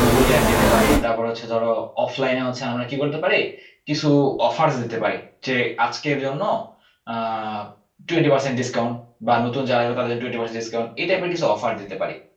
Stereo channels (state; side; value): identical; both; correlation 1.00